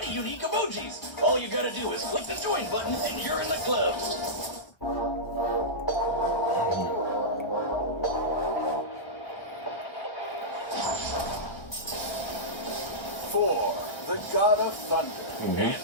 unique emojis. All you gotta do is click the join button and you're in the club. Thor, the god of thunder. And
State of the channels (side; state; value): right; late; 1.2 ms